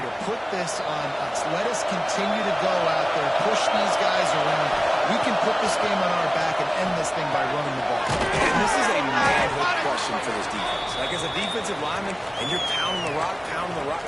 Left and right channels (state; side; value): identical; both; correlation 1.00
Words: put this on us. Let us continue to go out there, push these guys around. We can put this game on our back and end this thing by running the ball. And this is a manhood question for this defense. Like, as a defensive lineman, and you're pounding the rock,